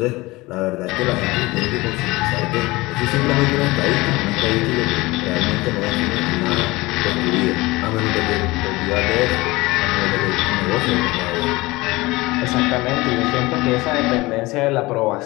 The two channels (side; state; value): right; quieter; 21.3 dB